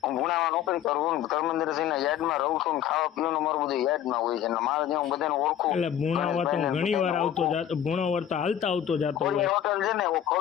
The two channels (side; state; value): right; quieter; 10.4 dB